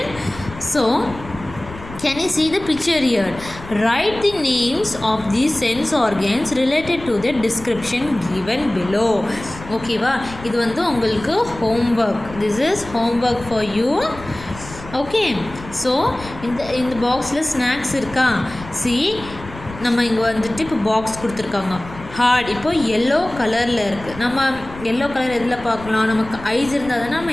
so can you see the picture here? Write the names of these sense organs related to the description given below. ஓகேவா, இது வந்து உங்களுக்கு homework. This is homework for you. Okay, so இந்த பாக்ஸில் snacks இருக்கா. See, நம்ம இங்கே வந்துட்டு இப்போ பாக்ஸ் கொடுத்துருக்காங்க. ஹார்ட் இப்போ எல்லோ கலரில் இருக்குது. நம்ம எல்லோ கலர் எதில் பார்க்கலாம், நமக்கு ஐஸ் இருந்தால் தானே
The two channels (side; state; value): left; noise; rumble, 15 dB below the sound